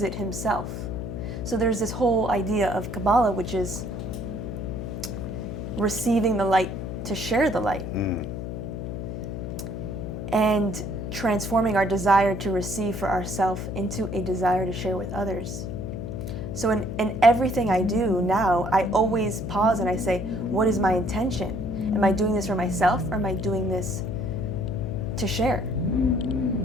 it himself. So there's this whole idea of Kabbalah, which is receiving the light to share the light. And transforming our desire to receive for ourselves into a desire to share with others. So in everything I do now, I always pause and I say, what is my intention? Am I doing this for myself, or am I doing this to share?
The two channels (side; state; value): left; noise; hum, 6 dB below the sound